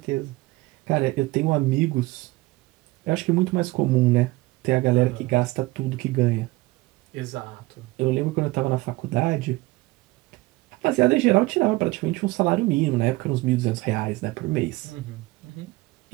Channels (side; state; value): left; quieter; 20.8 dB